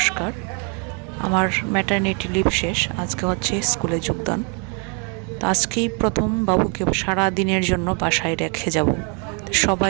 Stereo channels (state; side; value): quieter; left; 36.8 dB